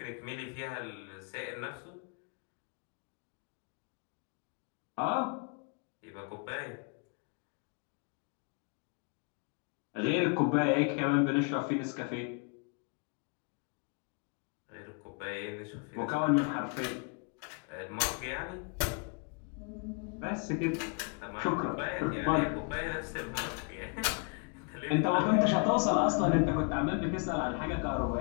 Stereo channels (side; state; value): right; quieter; 37.2 dB